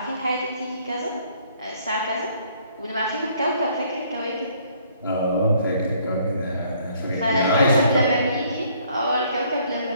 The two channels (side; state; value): both; inverted; correlation -0.63